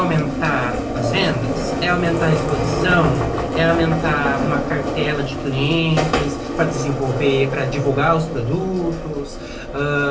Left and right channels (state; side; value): identical; both; correlation 1.00